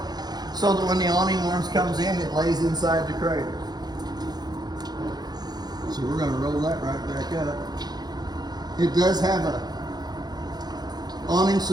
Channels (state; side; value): late; left; 0.19 ms